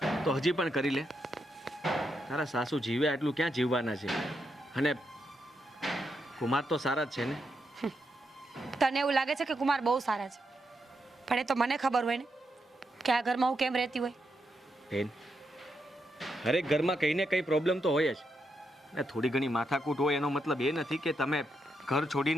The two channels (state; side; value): normal; both; correlation 0.82